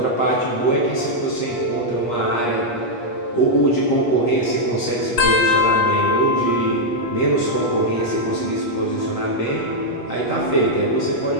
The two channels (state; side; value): late; right; 8.4 ms